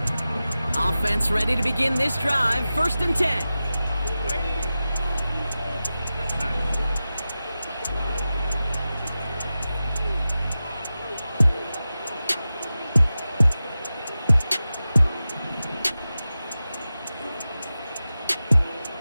Offense ready to begin this drive. 1st and 10.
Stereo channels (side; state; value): both; inverted; correlation -0.95